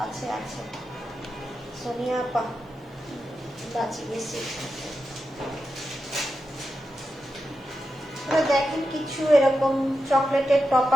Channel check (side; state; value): both; normal; correlation 0.89